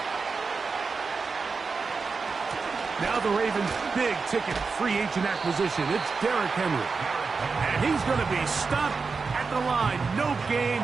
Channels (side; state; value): left; quieter; 4.7 dB